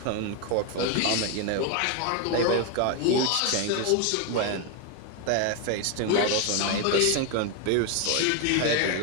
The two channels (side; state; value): both; different; correlation 0.01